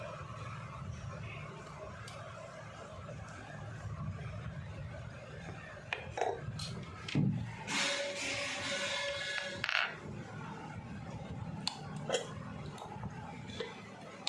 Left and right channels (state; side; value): identical; both; correlation 1.00